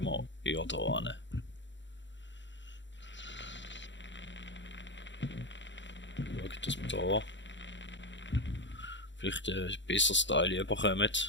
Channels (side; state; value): right; late; 0.53 ms